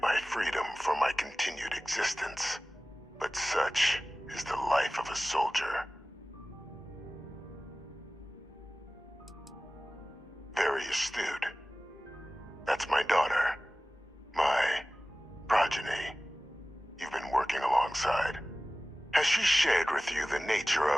my freedom for my continued existence. But such is the life of a soldier. Very astute. That's my daughter. My progeny. You've been working alongside. Has she shared with you the nature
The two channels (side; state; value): both; normal; correlation 0.97